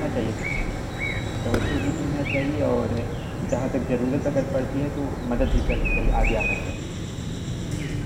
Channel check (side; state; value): both; identical; correlation 1.00